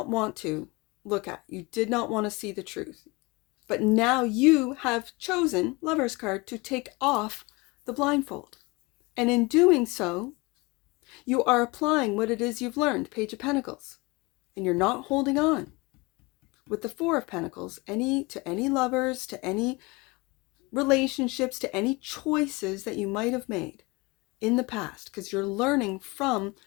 want to look at. You did not want to see the truth. But now you have chosen, Lover's card, to take off the blindfold. And in doing so, you are applying what it is you've learned, Page of Pentacles. And you're not holding on. With the Four of Pentacles, to any lovers, to any relationships, to any choices that you might have made in the past. Because you're learning from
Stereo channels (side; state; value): right; quieter; 25.3 dB